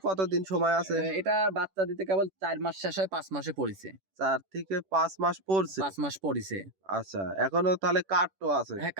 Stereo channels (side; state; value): left; late; 10 ms